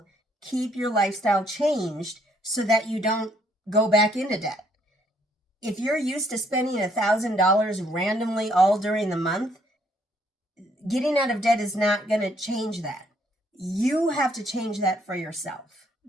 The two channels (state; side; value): normal; both; correlation 0.68